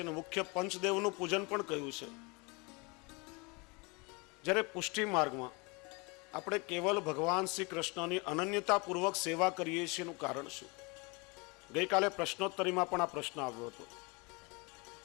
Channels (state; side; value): quieter; right; 28.7 dB